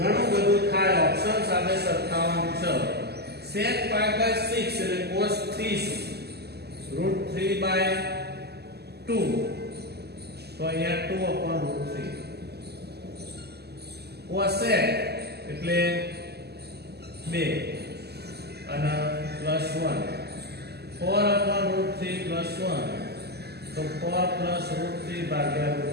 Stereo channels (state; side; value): late; left; 0.47 ms